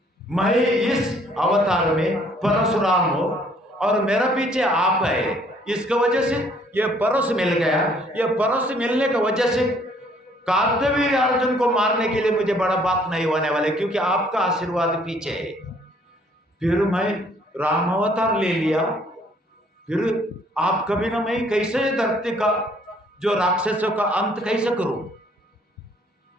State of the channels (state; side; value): normal; both; correlation 0.62